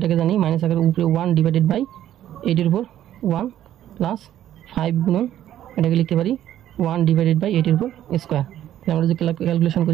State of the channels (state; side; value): quieter; left; 11.9 dB